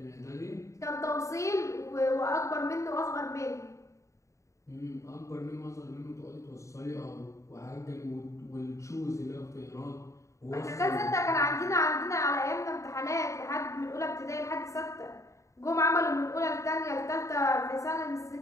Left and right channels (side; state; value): right; late; 0.15 ms